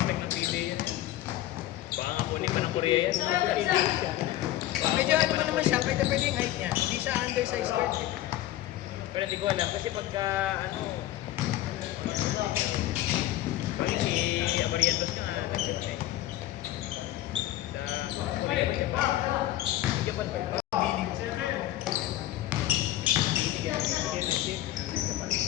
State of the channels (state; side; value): quieter; right; 14.6 dB